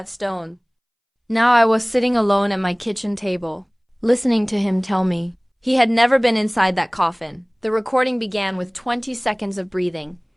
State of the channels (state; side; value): identical; both; correlation 1.00